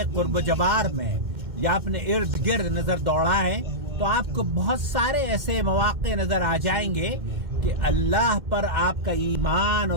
कुर्ब जवार में या अपने इर्द गिर्द नजर दौड़ाएं तो आपको बहुत सारे ऐसे मौके नजर आ जाएंगे कि अल्लाह पर आपका ईमान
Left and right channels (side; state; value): left; late; 2.1 ms